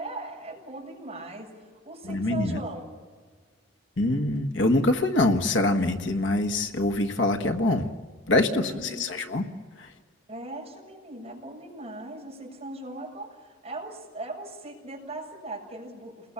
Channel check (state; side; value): normal; both; correlation 0.42